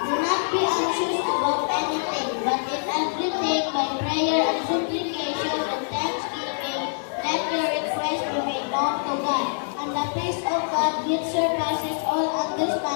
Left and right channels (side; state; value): right; silent; digital silence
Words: Do not be anxious about anything, but in everything by prayer and supplication and thanksgiving, let your requests be made known to God. And the peace of God, which surpasses all